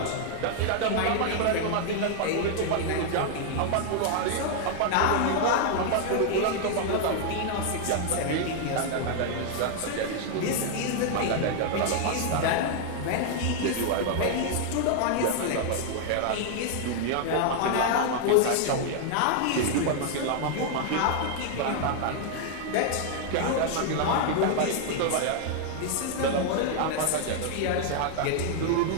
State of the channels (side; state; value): both; different; correlation 0.00